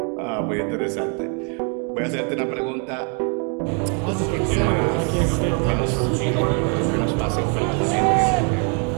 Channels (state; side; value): quieter; left; 39.2 dB